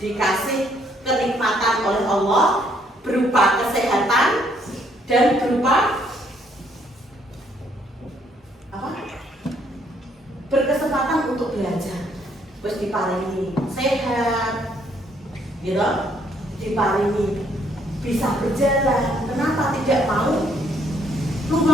dikasih kenikmatan oleh Allah berupa kesehatan dan berupa apa? Berkesempatan untuk belajar. Terus diparingi sehat, gitu, diparingi bisa berjalan. Kenapa tidak mau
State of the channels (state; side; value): normal; both; correlation 0.68